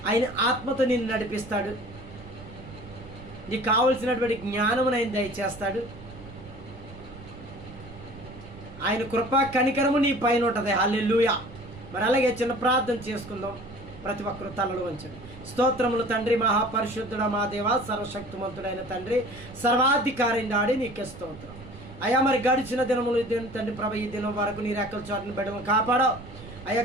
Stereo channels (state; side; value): noise; right; rumble, 16 dB below the sound